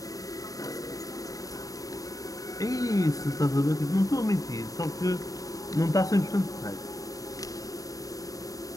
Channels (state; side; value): late; right; 0.17 ms